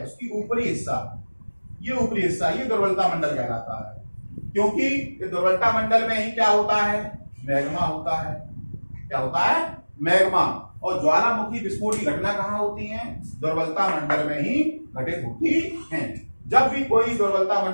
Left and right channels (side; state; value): both; inverted; correlation -1.00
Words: उसकी ऊपरी हिस्सा, ये ऊपरी हिस्सा, ये दुर्बलता मंडल कहलाता है। क्योंकि ये दुर्बलता मंडल में ही क्या होता है? मैग्मा होता है। क्या होता है? मैग्मा। और ज्वालामुखी विस्फोट की घटना कहां होती है? दुर्बलता मंडल में ही घटित होती है। जब भी कोई दुर्बलता